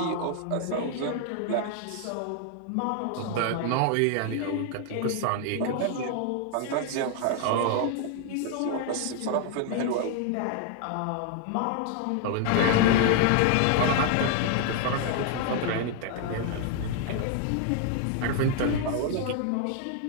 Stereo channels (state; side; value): different; both; correlation 0.00